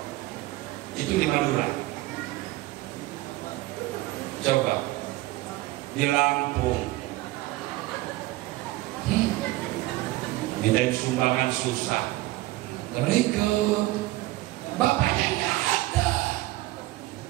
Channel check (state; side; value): quieter; left; 18.2 dB